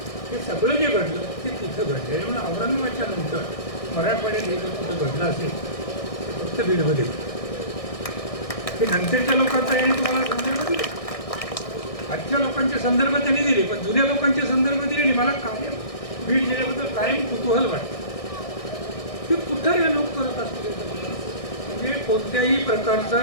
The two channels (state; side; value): late; right; 1.6 ms